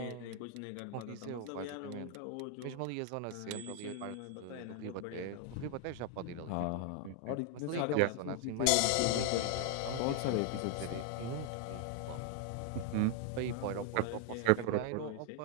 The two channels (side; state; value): both; different; correlation 0.00